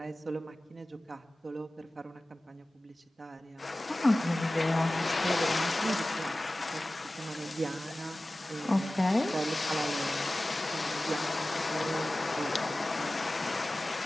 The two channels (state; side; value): normal; both; correlation 0.97